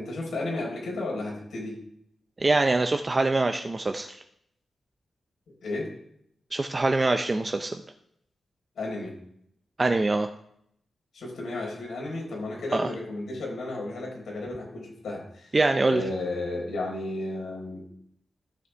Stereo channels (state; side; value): normal; both; correlation 0.94